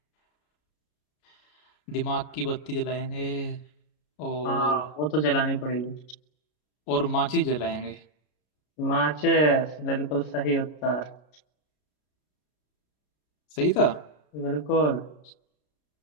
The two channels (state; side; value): late; right; 33 ms